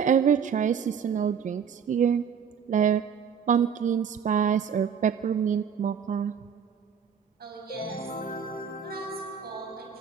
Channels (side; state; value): left; quieter; 7.3 dB